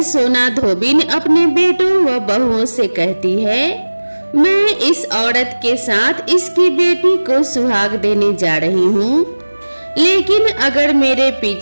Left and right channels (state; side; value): inverted; both; correlation -1.00